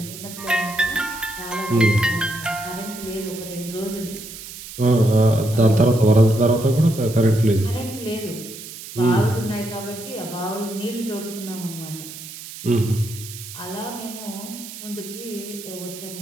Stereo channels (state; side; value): noise; right; hiss, 13 dB below the sound